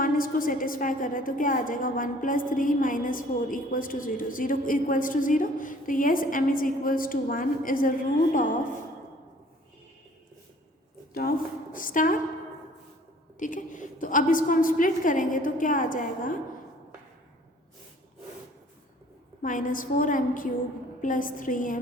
इसको सेटिस्फाई कर रहा है, तो क्या आ जाएगा? 1 plus 3 minus 4 equals to 0, 0 equals to 0, तो yes m is equals to 1 is a root of star. ठीक है, तो अब इसको हम स्प्लिट करेंगे तो क्या आ जाएगा? -4m cube plus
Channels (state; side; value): normal; both; correlation 0.54